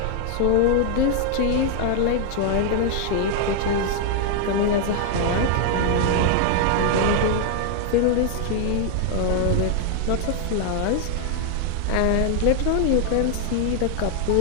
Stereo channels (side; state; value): both; different; correlation 0.00